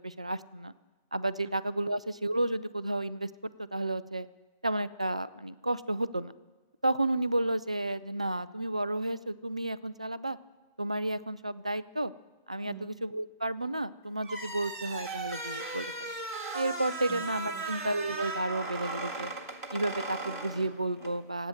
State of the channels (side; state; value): both; inverted; correlation -0.80